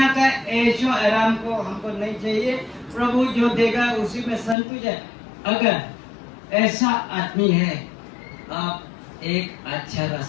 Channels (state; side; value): drops out; right; at 4.5 s